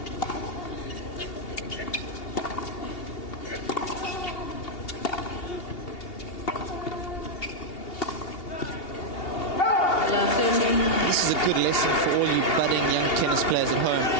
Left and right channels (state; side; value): late; right; 2.8 ms